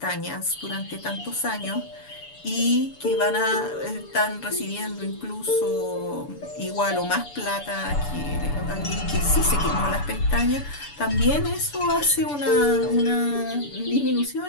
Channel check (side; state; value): right; late; 6.9 ms